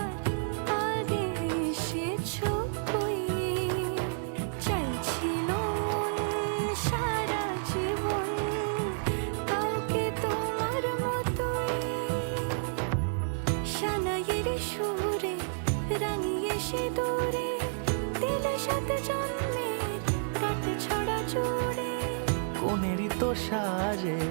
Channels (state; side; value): silent; left; 58 dB below the other